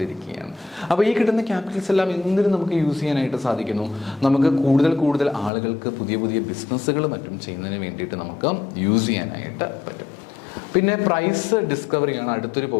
അപ്പോൾ ഈ കിട്ടുന്ന ക്യാപിറ്റൽസ് എല്ലാം എന്തിനും നമുക്ക് യൂസ് ചെയ്യാനായിട്ട് സാധിക്കുന്നു? നമുക്ക് കൂടുതൽ ആളുകൾക്ക് പുതിയ ബിസിനസ്സുകൾ മറ്റും ചെയ്യുന്നതിന് വേണ്ടിയിട്ട് നമുക്ക് യൂസ് ചെയ്യാനായിട്ട് പറ്റും. പിന്നെ പ്രൈസ് ഡിസ്കവറിയാണ് അടുത്തൊരു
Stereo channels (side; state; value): right; drops out; at 5.5 s